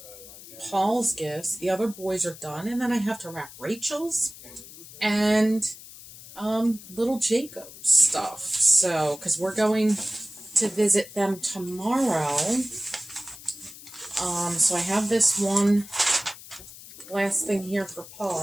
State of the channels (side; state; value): left; noise; hiss, 17 dB below the sound